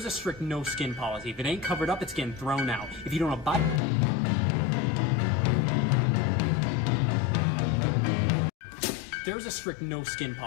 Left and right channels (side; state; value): right; drops out; at 3.8 s